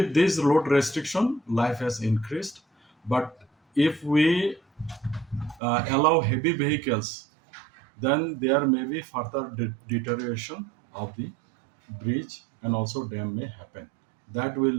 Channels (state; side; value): drops out; left; at 5.6 s